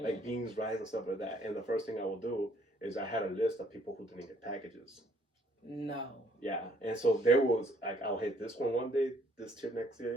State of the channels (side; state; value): both; normal; correlation 0.64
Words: beans, rice, and stuff like that. And the first thing I will do is I had a list of people who didn't get packages. No. Yeah, and so there was like I'll hit this one day, this tip next